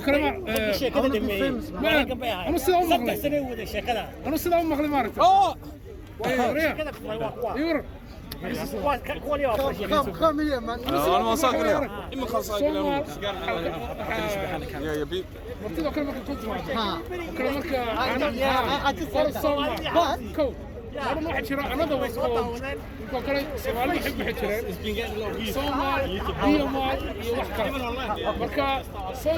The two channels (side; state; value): both; identical; correlation 1.00